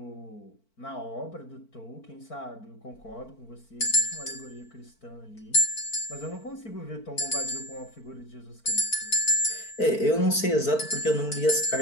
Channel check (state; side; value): late; right; 4.5 ms